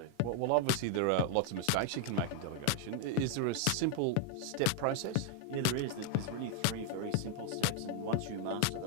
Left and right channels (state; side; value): different; both; correlation 0.00